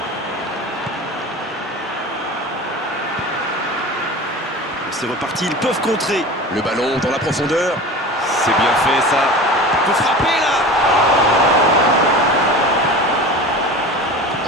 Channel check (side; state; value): both; normal; correlation 0.34